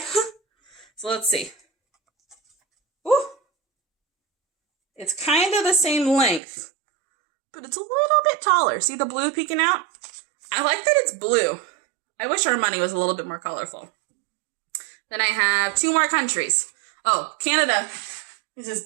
So let's see. Ooh! It's kind of the same length, but it's a little bit taller. See the blue peeking out? I like that it's blue. I wish our money was a little bit more colorful. Then I have 2 more countries. Oh, Canada is this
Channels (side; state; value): left; drops out; at 6.4 s